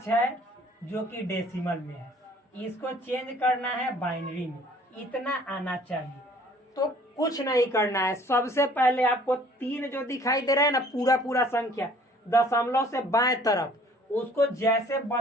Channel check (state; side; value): normal; both; correlation 0.55